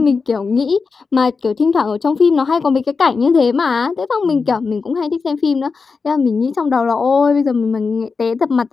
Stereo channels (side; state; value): right; quieter; 4.8 dB